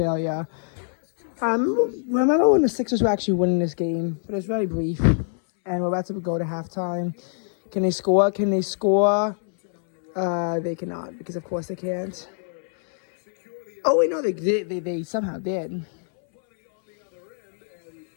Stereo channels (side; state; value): right; silent; 63 dB below the other